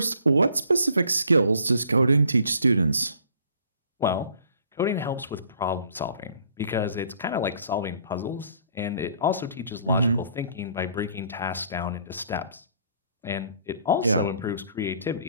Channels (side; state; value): both; inverted; correlation -0.58